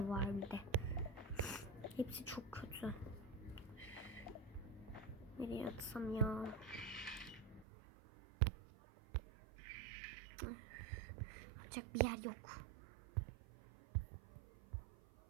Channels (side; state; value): left; drops out; at 7.7 s